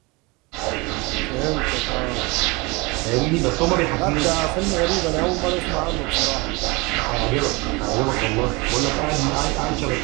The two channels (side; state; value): left; quieter; 25.9 dB